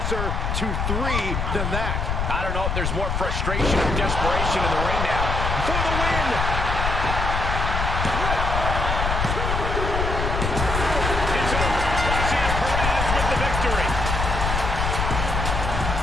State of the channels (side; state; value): left; noise; rumble, 1 dB below the sound